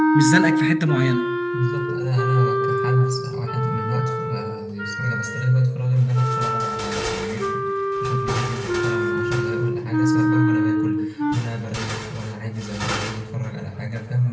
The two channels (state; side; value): identical; both; correlation 1.00